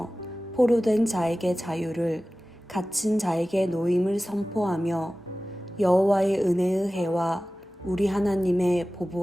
포로된 자에게 자유를, 갇힌 자에게 노임을 선포하며 여호와의 은혜의 해와 우리 하나님의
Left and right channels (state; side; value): normal; both; correlation 0.96